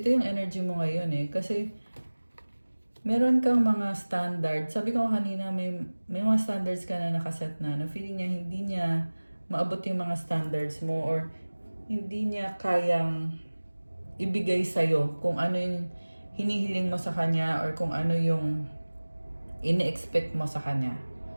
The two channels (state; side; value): inverted; both; correlation -1.00